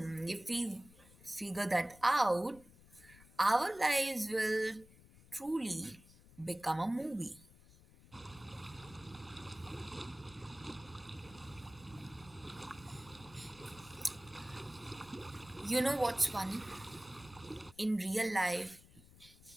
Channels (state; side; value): noise; left; rumble, 23 dB below the sound